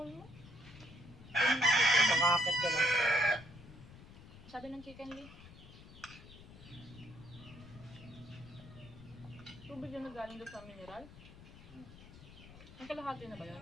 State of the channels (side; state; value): left; noise; rumble, 18 dB below the sound